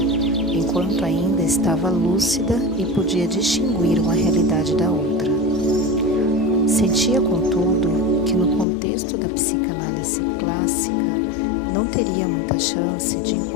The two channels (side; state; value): right; drops out; at 8.7 s